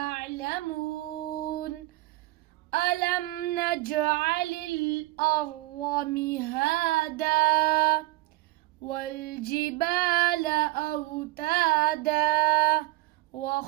ألم نجعل الأرض مهادا والجبال أوتادا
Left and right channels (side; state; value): left; quieter; 19.8 dB